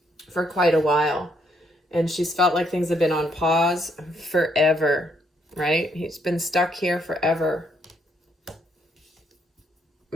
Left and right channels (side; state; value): both; normal; correlation 0.72